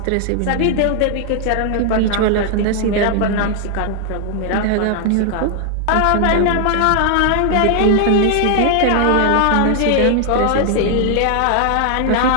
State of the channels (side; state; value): both; different; correlation 0.00